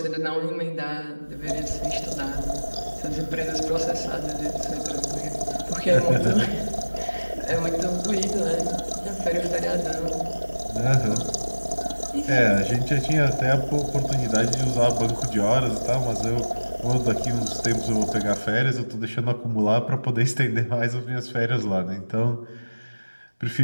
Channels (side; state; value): both; inverted; correlation -1.00